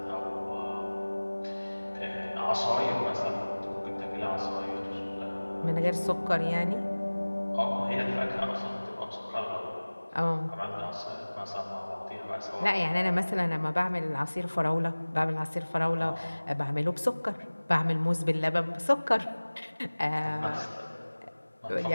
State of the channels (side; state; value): both; inverted; correlation -1.00